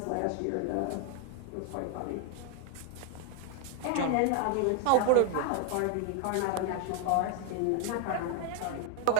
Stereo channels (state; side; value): different; both; correlation 0.01